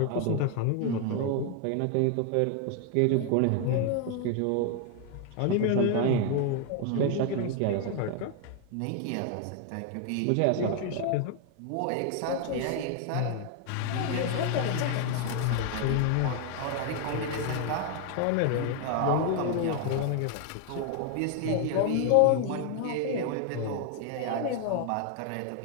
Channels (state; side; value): different; both; correlation 0.00